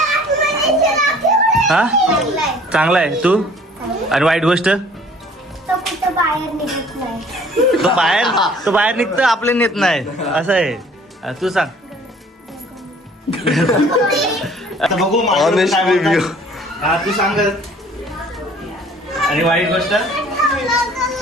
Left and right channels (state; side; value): normal; both; correlation 0.53